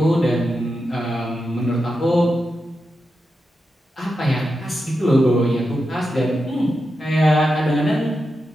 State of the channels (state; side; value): normal; both; correlation 0.89